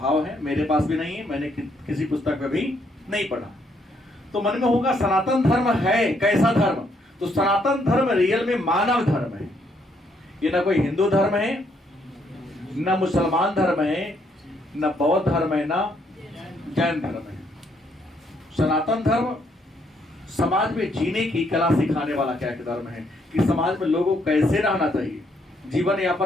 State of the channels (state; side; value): normal; both; correlation 0.72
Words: है। मेरे पास भी नहीं है, मैंने किसी पुस्तक में भी नहीं पढ़ा। तो मन में होगा सनातन धर्म है कैसा धर्म? तो सनातन धर्म रियल में मानव धर्म है। ये ना कोई हिंदू धर्म है, न मुसलमान धर्म है, न बौद्ध धर्म है, न जैन धर्म है। सनातन धर्म समाज में जीने की कला सिखाने वाला क्या एक धर्म है कि समाज में लोगों को कैसे रहना चाहिए, जीवन